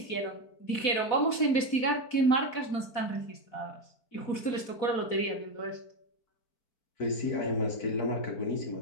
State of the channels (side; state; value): right; late; 4.1 ms